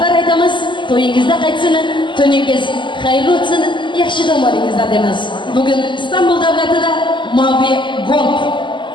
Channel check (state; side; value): late; right; 0.23 ms